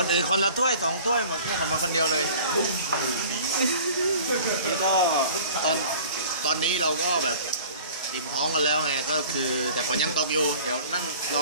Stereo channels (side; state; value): both; inverted; correlation -0.45